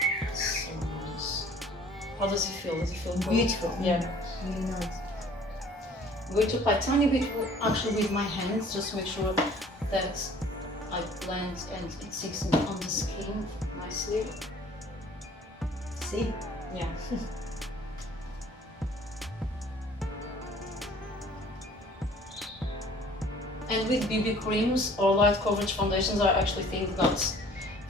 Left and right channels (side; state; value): both; normal; correlation 0.52